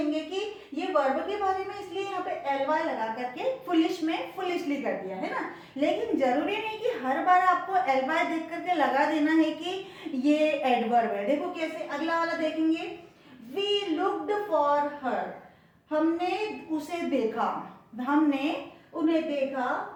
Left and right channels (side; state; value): both; identical; correlation 1.00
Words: कि ये वर्ब के बारे में, इसलिए यहाँ पे एलवाई लगा करके फुलिश में फुलिशली कर दिया, है ना। लेकिन जरूरी नहीं कि हर बार आपको एलवाई देख करके लगा देना है कि ये एडवर्ब है। देखो कैसे, अगला वाला देखेंगे। वी लुक्ड फॉर हर, हमने उसे देखा, हमने उन्हें देखा।